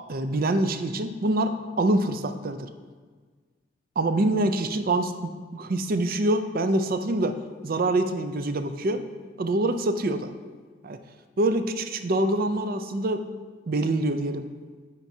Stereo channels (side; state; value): both; normal; correlation 0.41